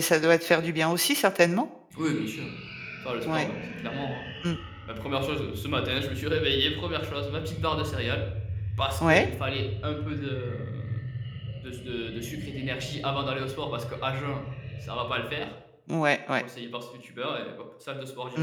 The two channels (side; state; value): both; identical; correlation 1.00